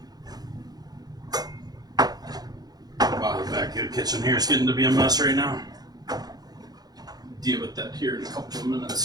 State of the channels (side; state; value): left; late; 0.19 ms